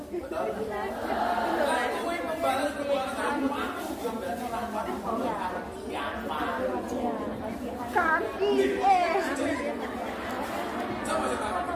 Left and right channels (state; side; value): identical; both; correlation 1.00